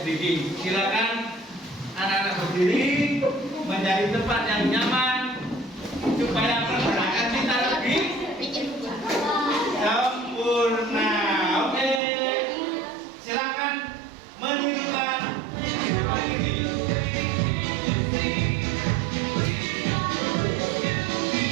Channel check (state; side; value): drops out; left; at 12.0 s